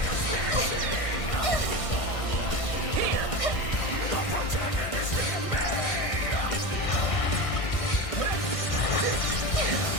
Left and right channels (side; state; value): right; late; 1.6 ms